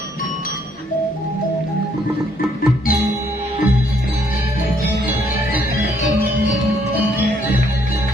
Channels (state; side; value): normal; both; correlation 0.68